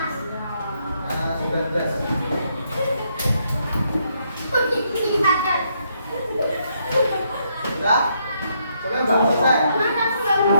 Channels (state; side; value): inverted; both; correlation -0.75